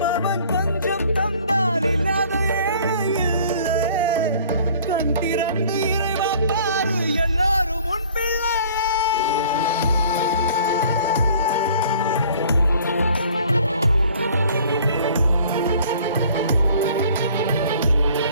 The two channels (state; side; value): inverted; both; correlation -0.52